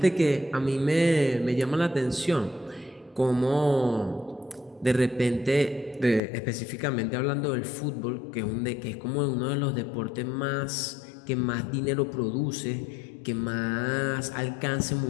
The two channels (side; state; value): right; drops out; at 6.2 s